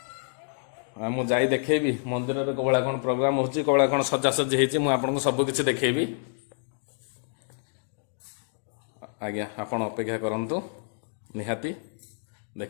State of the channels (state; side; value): silent; right; digital silence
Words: मुझे देखेबी मंदिर में कौड़ा कौन प्रोग्राम हो कौड़ा कौन सजासजी होती सबकि देखेबी। आज्ञा आपण अपेक्षा करंतु निहाती